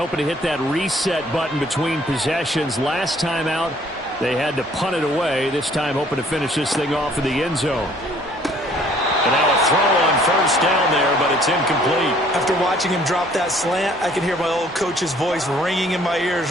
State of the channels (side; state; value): both; normal; correlation 0.59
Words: to hit that reset button between possessions. Last time out, they had to punt it away. This time hoping to finish this thing off in the end zone. And now a throw on first down there, but it's incomplete. After watching him drop that slant, I can hear my old coach's voice ringing in my